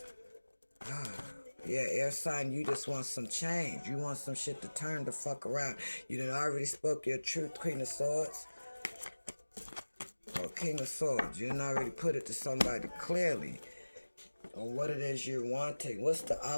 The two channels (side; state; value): both; inverted; correlation -1.00